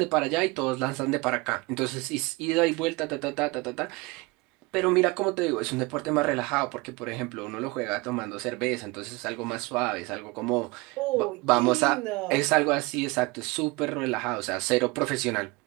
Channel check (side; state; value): left; quieter; 24.6 dB